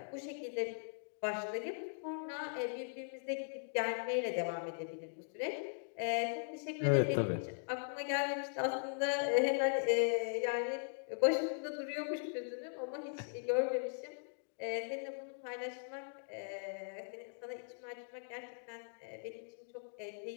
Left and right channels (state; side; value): silent; right; digital silence